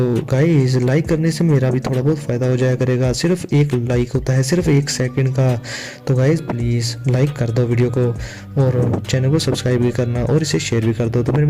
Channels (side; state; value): both; identical; correlation 1.00